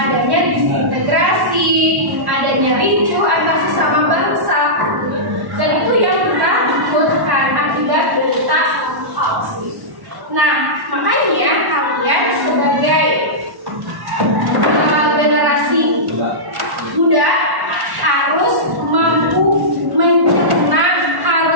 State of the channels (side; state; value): left; late; 1.1 ms